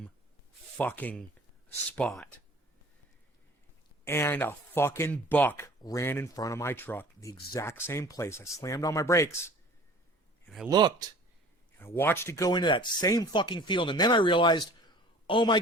fucking spot. And a fucking buck ran in front of my truck. The exact same place. I slammed on my brakes. And I looked. I watched it go into that same fucking field, and then I realized, oh my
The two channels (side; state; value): both; normal; correlation 0.46